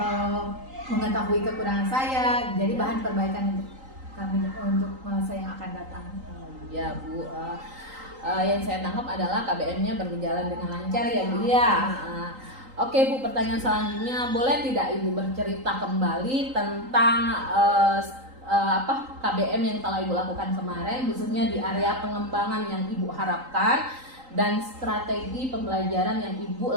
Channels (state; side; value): late; left; 3.8 ms